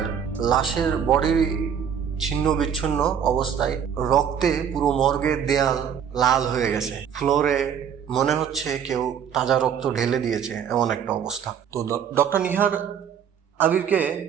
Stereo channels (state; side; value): quieter; left; 8.1 dB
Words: লাশের বডি ছিন্ন বিচ্ছিন্ন অবস্থায়, রক্তে পুরো মর্গের দেয়াল লাল হয়ে গেছে। ফ্লোরে মনে হচ্ছে কেউ তাজা রক্ত ঢেলে দিয়েছে, এমন একটা অবস্থা। তো ডক্টর নিহার আবিরকে